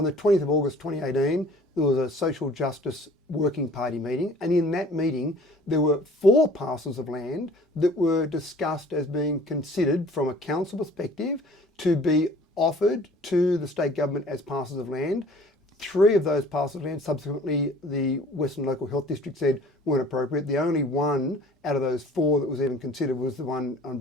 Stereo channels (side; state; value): both; normal; correlation 0.50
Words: the 20th of August 2018, there was a Social Justice Working Party meeting, and in that meeting, there were 4 parcels of land that were discussed as being considered from a council perspective to be offered to the state government as parcels of land. 3 of those parcels of land, subsequently the Western Local Health District said weren't appropriate. The only one out of those 4 that was even considered was the one on